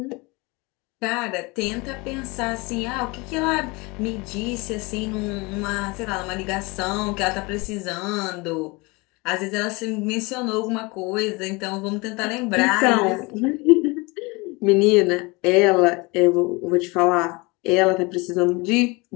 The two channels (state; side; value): quieter; right; 25.8 dB